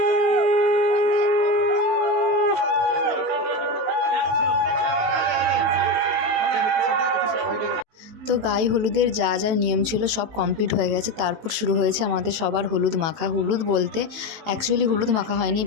তো গায়ে হলুদের যা যা নিয়ম ছিল সব কমপ্লিট হয়ে গেছে। তারপর শুরু হয়েছে আমাদের সবার হলুদ মাখা। হলুদ বলতে অ্যাকচুয়ালি হলুদ মাখা হয়নি,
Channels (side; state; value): left; late; 18 ms